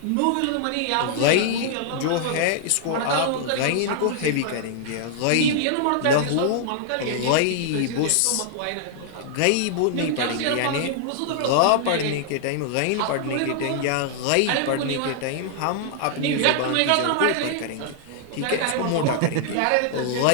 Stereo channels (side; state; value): both; different; correlation -0.01